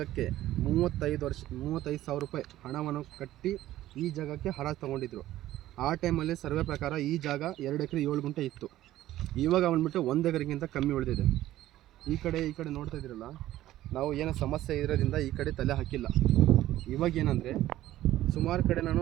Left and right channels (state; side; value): quieter; left; 14.3 dB